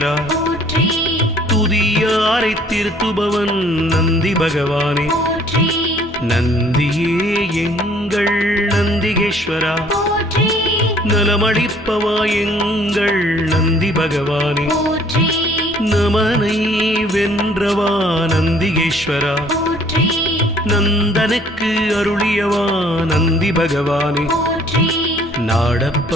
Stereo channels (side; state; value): both; normal; correlation 0.58